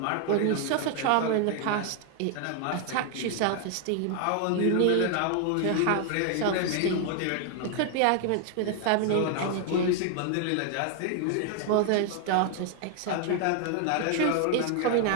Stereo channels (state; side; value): different; both; correlation 0.00